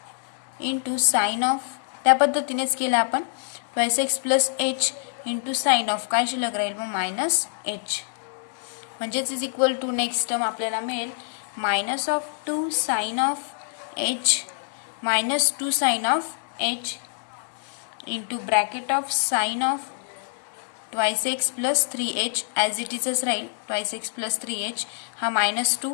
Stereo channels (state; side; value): silent; right; digital silence